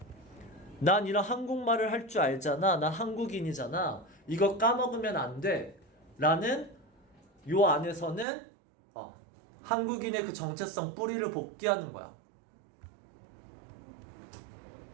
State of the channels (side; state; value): left; drops out; at 8.2 s